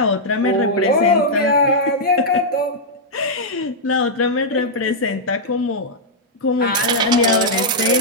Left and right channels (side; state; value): both; normal; correlation -0.07